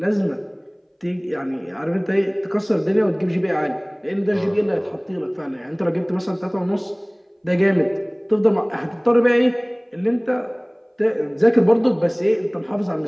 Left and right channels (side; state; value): both; identical; correlation 1.00